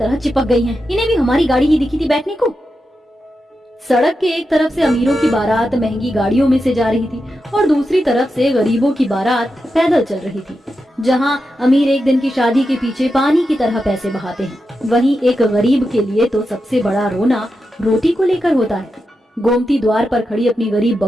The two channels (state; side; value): normal; both; correlation 0.89